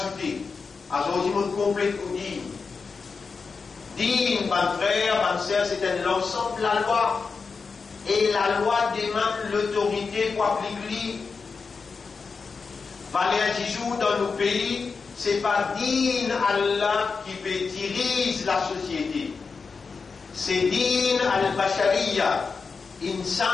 Ajouter mon complet tout dit. Digne, mon frère, ma soeur, c'est l'ensemble de la loi. Et la loi demande l'autorité pour appliquer. Valer un jour dans nos pays, c'est pas digne Allah qui peut diriger la société. C'est digne al-Bashariya,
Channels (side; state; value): right; quieter; 4.9 dB